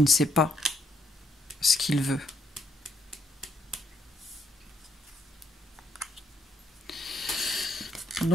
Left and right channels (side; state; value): both; normal; correlation 0.73